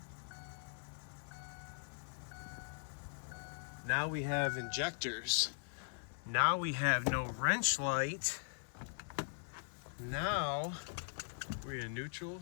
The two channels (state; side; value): silent; right; digital silence